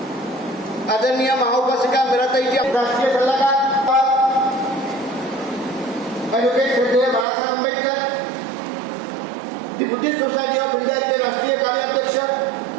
आदरणीय महाउपासिका मीराताईची राष्ट्रीय सल्लागार ॲडव्होकेट श्रद्धेय बाळासाहेब आंबेडकर, दी बुद्धिस्ट सोसायटी ऑफ इंडियाचे राष्ट्रीय कार्याध्यक्ष,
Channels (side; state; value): left; drops out; at 7.2 s